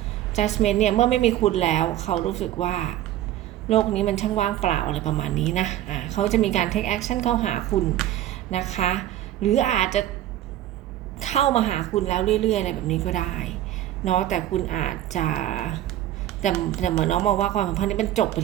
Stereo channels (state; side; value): quieter; left; 13.0 dB